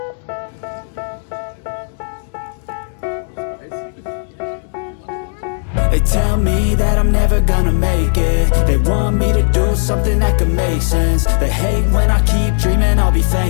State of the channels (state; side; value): silent; right; digital silence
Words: They tell me that I'm never gonna make it. They want me to do something that could make sense. They hate when I keep dreaming I'll be